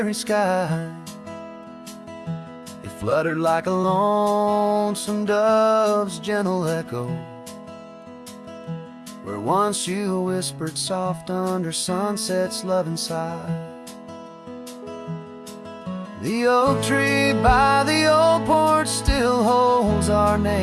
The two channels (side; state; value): both; identical; correlation 1.00